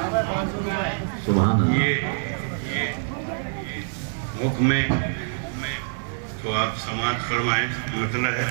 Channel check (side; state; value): left; silent; digital silence